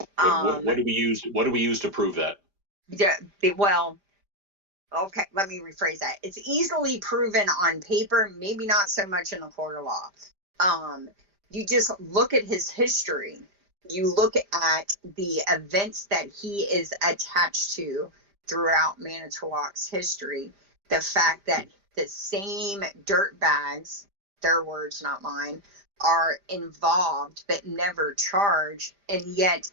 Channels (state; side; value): late; left; 5.0 ms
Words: What do we use? What do we use to prove that? Yeah. Well. Okay, let me rephrase that. It's easily proven on paper, maybe not so much in a court of law. You just look at his history. You look at the events that he is attached to throughout Manitowoc's history. The fact that the same dirtbags, their words, not mine, are involved but never charged. And yet